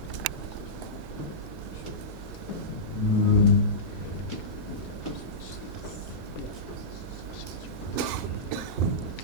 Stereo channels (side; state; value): both; normal; correlation -0.16